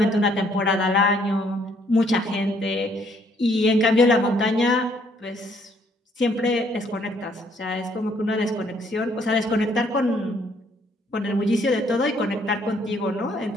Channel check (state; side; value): normal; both; correlation 0.66